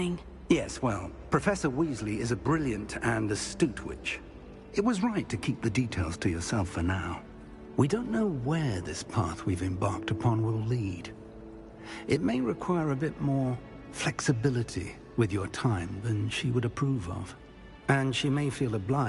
Yes, well, Professor Weasley is a brilliant and astute witch. It was right to keep the details to yourself for now. We don't know where this path we've embarked upon will lead. It may require a bit more flexibility with your time than she would approve of. And she may feel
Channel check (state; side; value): identical; both; correlation 1.00